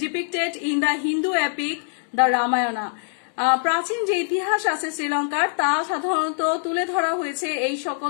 depicted in the Hindu epic, the Ramayana. প্রাচীন যে ইতিহাস আছে শ্রীলঙ্কার তা সাধারণত তুলে ধরা হয়েছে এই সকল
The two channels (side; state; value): right; silent; 63 dB below the other